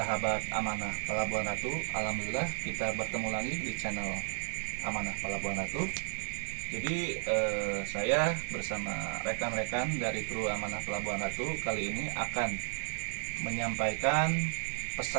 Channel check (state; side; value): silent; left; digital silence